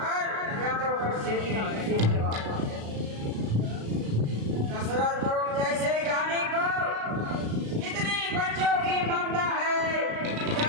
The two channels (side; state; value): left; late; 36 ms